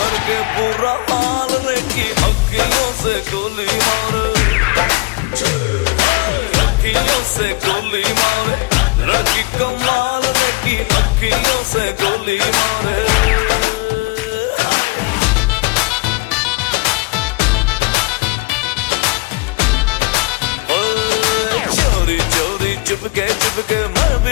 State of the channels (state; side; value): quieter; right; 25.2 dB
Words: बुरा हाल रे की अखियों से गोली मारे, अखियों से गोली मारे, लड़की को मार रे की अखियों से गोली मारे। चोरी चोरी चिपके मैं